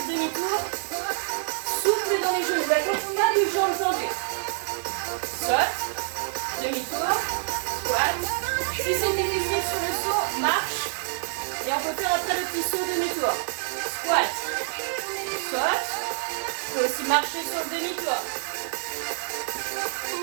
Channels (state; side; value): silent; left; 56 dB below the other